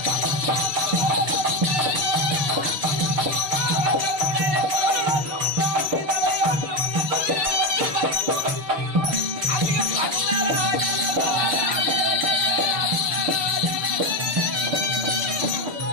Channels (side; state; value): left; late; 6.8 ms